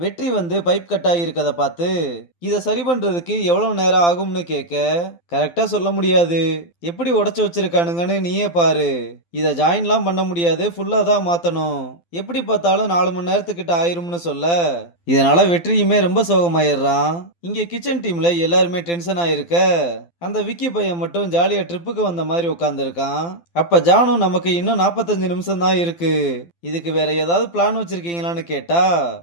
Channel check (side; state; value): right; late; 12 ms